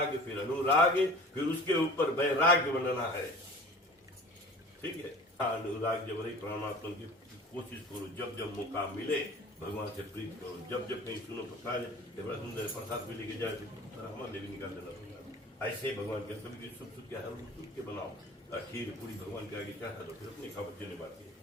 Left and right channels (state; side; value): normal; both; correlation 0.42